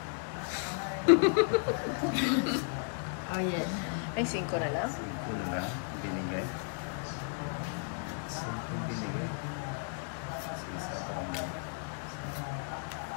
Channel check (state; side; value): silent; right; 55 dB below the other